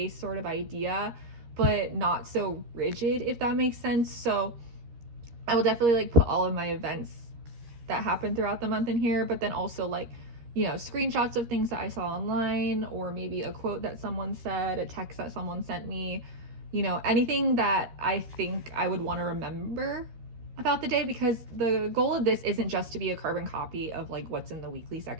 sort of idea, but not so rigid, if that makes sense. So I will definitely like put all of my events that happen throughout the month in here, but then also like, you know, screenshots of things that I saw online, or maybe a quote that someone said, a text that someone sent me, you know, anything that I think I would want to remember about the day, because the goal of this isn't just to be a carbon copy of like what's in the weekly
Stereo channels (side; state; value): left; late; 13 ms